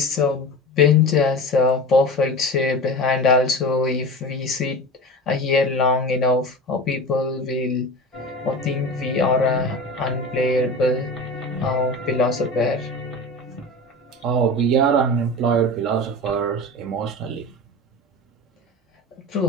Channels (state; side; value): normal; both; correlation 0.30